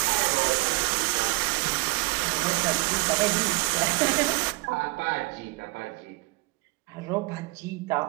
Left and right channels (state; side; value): quieter; left; 25.6 dB